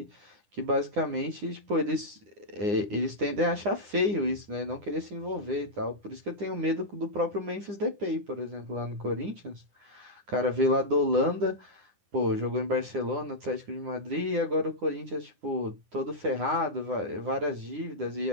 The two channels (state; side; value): late; left; 9.7 ms